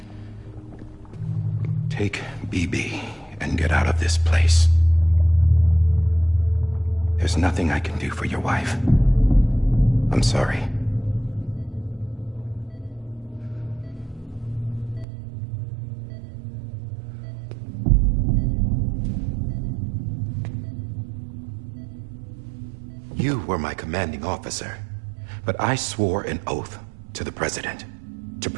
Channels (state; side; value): drops out; left; at 15.1 s